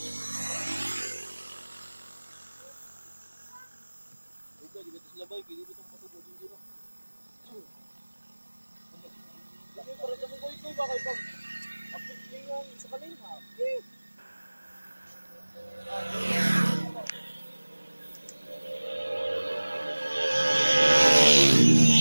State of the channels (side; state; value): both; inverted; correlation -1.00